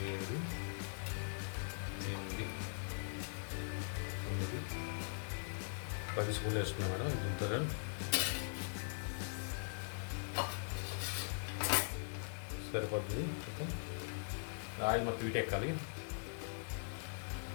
8, 9, 10 స్పూన్లు వేసుకున్నాను. దీంతో సరిపోతుంది. ఆయిల్ మొత్తం వీటెక్కాలి.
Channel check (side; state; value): right; silent; digital silence